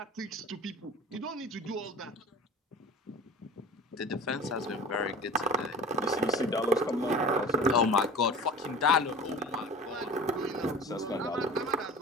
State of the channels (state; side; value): normal; both; correlation 0.38